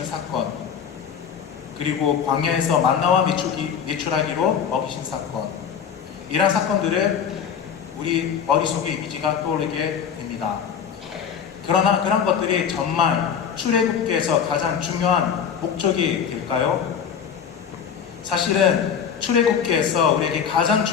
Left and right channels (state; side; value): quieter; right; 7.5 dB